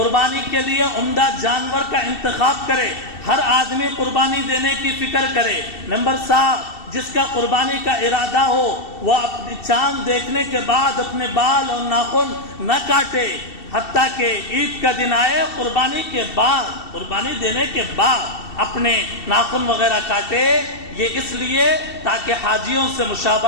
کے لیے عمدہ جانور کا انتخاب کرے، ہر آدمی قربانی دینے کی فکر کرے۔ نمبر 7 جس کا قربانی کا ارادہ ہو وہ اپنی چاند دیکھنے کے بعد اپنے بال اور ناخن نہ کاٹے، حتیٰ کہ عید کا دن آئے قربانی کے بعد، قربانی دینے کے بعد اپنے ناخن وغیرہ کاٹے، یہ اس لیے تاکہ حاجیوں سے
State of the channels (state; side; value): late; right; 2.7 ms